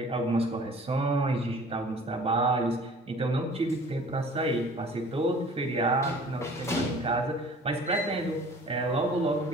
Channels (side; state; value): both; normal; correlation 0.48